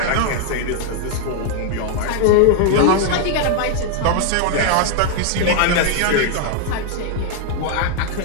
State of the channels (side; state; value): both; different; correlation 0.00